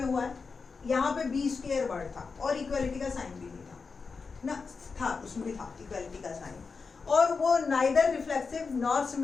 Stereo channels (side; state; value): right; quieter; 4.8 dB